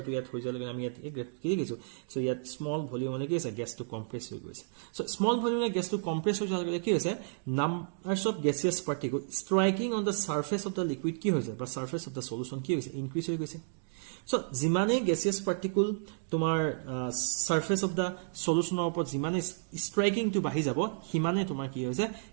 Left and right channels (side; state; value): left; silent; digital silence